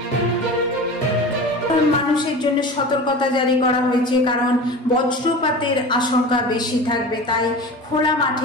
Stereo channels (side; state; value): both; normal; correlation 0.33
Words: মানুষের জন্য সতর্কতা জারি করা হয়েছে, কারণ বজ্রপাতের আশঙ্কা বেশি থাকবে, তাই খোলা